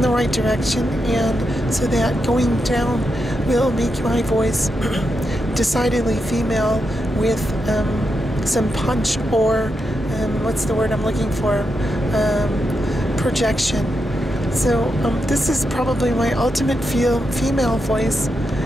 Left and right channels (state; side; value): normal; both; correlation 0.85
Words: the right direction, and so that going down will make my voice decidedly female with some punch, or what's the word I'm looking for? Projection. So this is probably my ultimate female voice,